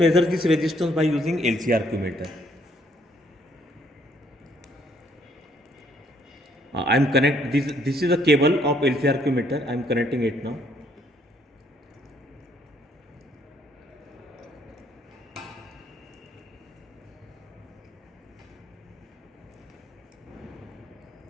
this resistance by using LCR meter. This is a cable of LCR meter. I am connecting it now.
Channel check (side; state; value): both; normal; correlation 0.67